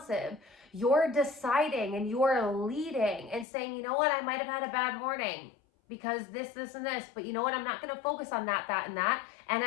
You're deciding and you're leading and saying, you know what, I might have had a bad morning because this, and this, but you know what, I'm not going to focus on that, and that. And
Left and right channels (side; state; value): right; drops out; at 3.5 s